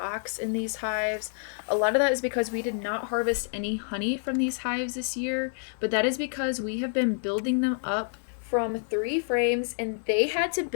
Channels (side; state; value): right; silent; 59 dB below the other